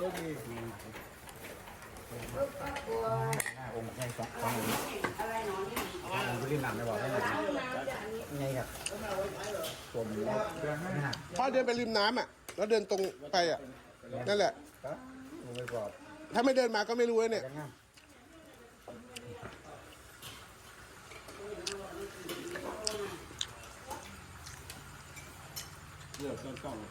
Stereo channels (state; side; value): identical; both; correlation 1.00